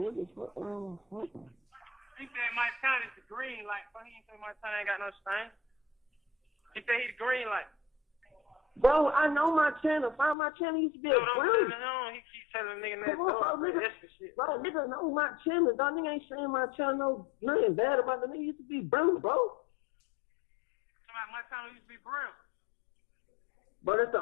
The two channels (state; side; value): drops out; right; at 10.4 s